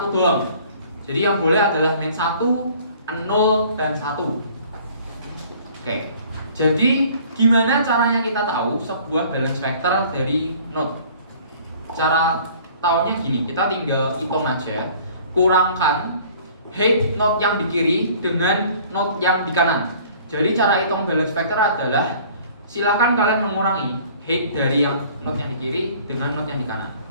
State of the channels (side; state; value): both; inverted; correlation -0.52